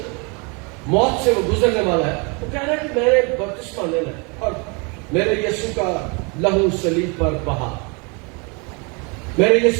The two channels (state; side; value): quieter; left; 31.5 dB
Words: موت سے وہ گزرنے والا ہے، وہ کہہ رہا ہے کہ میں نے بپتسمہ لینا ہے اور میرے یسوع کا لہو صلیب پر بہا، میرے